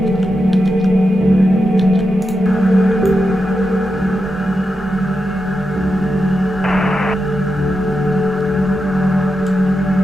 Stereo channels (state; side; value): normal; both; correlation 0.88